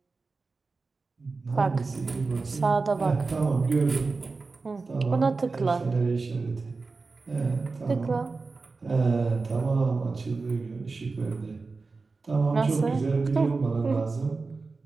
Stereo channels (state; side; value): quieter; left; 4.0 dB